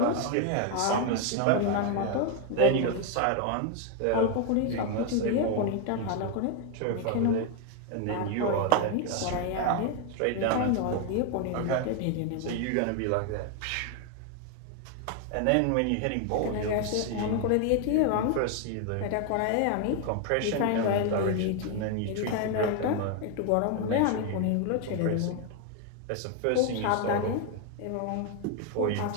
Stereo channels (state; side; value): different; both; correlation 0.01